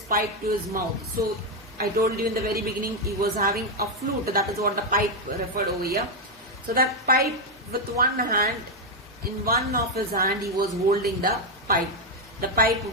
pipe to his mouth. So I told you in the very beginning he was having a flute. That is what the pipe referred over here. So that pipe with one hand, in one of his hand he was holding the pipe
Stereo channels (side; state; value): both; normal; correlation 0.03